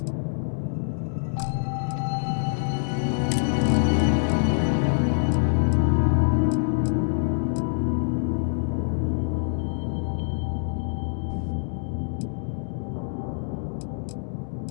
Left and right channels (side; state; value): right; silent; digital silence